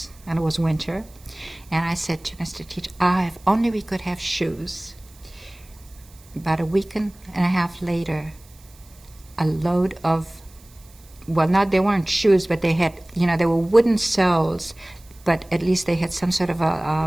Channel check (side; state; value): right; noise; hiss, 26 dB below the sound